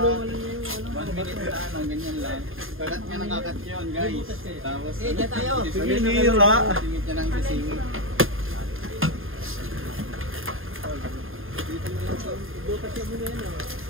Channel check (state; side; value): late; left; 0.60 ms